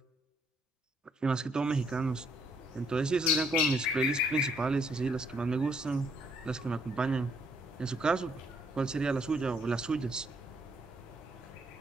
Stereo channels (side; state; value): both; normal; correlation 0.70